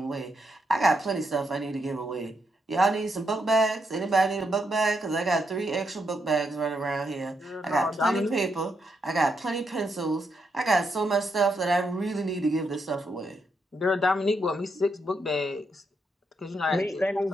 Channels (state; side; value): normal; both; correlation 0.80